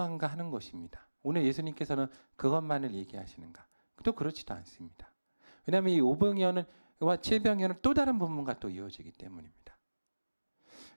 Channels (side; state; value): both; inverted; correlation -1.00